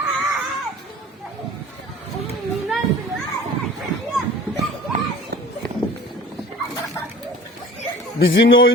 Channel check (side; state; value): both; normal; correlation 0.43